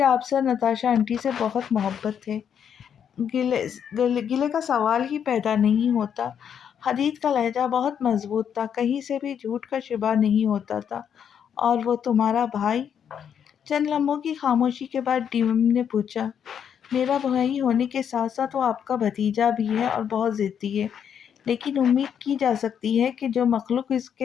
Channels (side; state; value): right; quieter; 8.2 dB